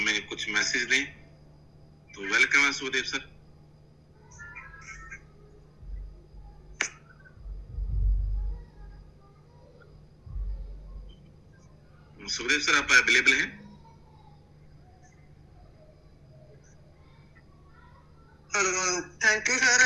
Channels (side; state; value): both; identical; correlation 1.00